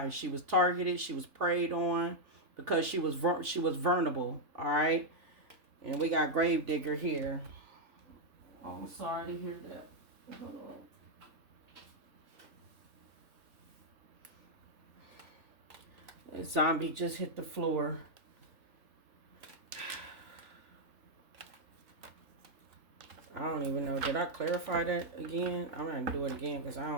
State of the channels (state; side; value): late; left; 3.4 ms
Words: She was targeted. She was preyed on because she was vulnerable. All right. And we got Gravedigger here. Oh, I'm sorry to hear that. Hold on. The zombie just hit the floor. I don't even know. Did I clarify that again? I'm going to do it again because I